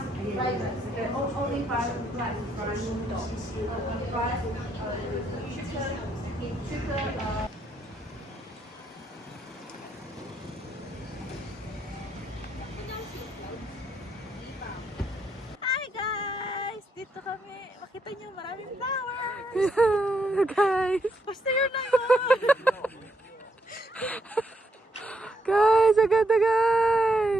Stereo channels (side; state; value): both; normal; correlation 0.76